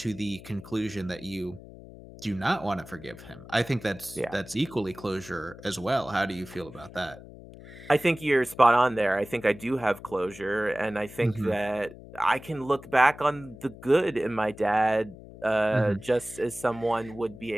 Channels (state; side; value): noise; left; hum, 17 dB below the sound